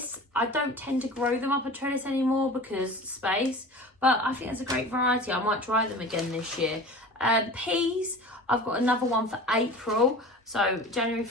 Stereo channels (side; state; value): both; normal; correlation 0.37